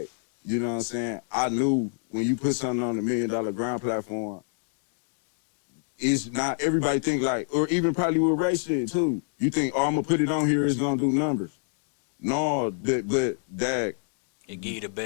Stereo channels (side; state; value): right; silent; digital silence